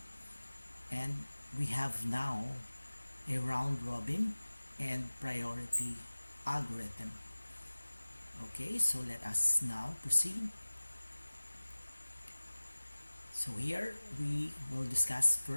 and we have now a round robin and priority algorithm. Okay, so let us now proceed. So here we will discuss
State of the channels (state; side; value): inverted; both; correlation -1.00